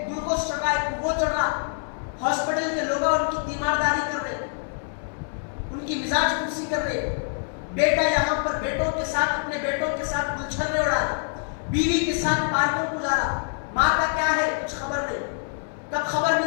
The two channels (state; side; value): silent; right; 61 dB below the other